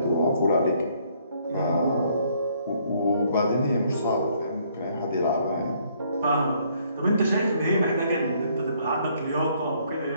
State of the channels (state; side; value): inverted; both; correlation -0.66